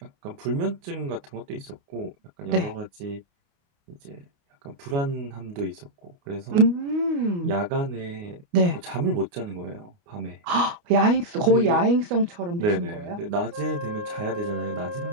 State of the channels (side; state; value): left; late; 29 ms